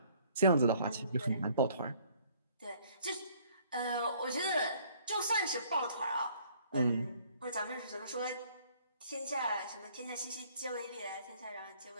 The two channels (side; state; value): both; inverted; correlation -0.60